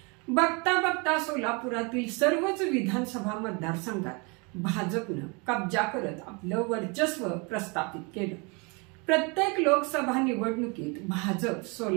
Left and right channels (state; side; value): quieter; left; 30.7 dB